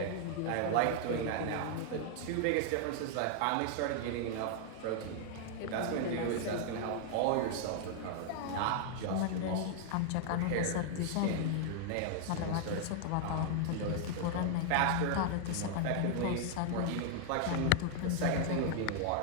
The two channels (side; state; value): both; different; correlation 0.00